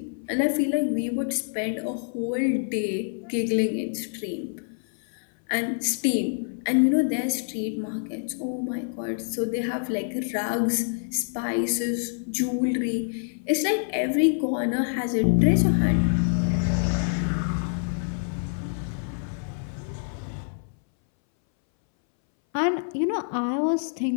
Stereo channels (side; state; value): right; silent; 61 dB below the other